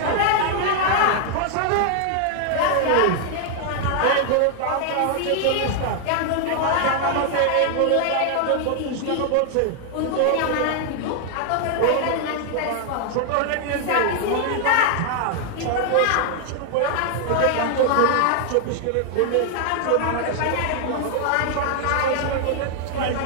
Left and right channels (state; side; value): different; both; correlation 0.00